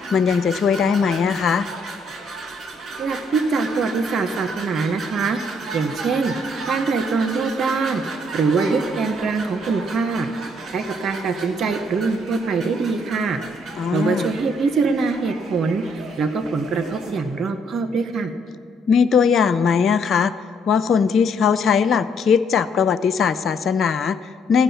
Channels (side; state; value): both; normal; correlation 0.69